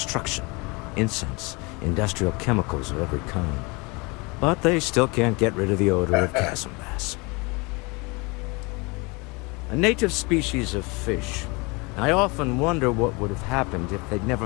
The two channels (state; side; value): quieter; right; 27.8 dB